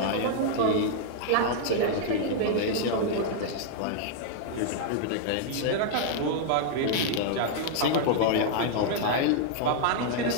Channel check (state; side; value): different; both; correlation -0.01